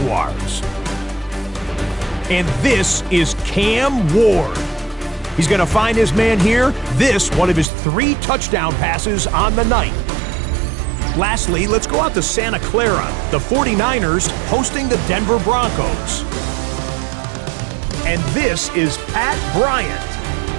And this is Cam Ward. He's going to find his man here. This, one of his 3 touchdown passes on the night. Lastly, let's go out to Santa Clara, the 49ers hosting the Denver Broncos. And this is Pat Bryant.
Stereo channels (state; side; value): drops out; left; at 7.7 s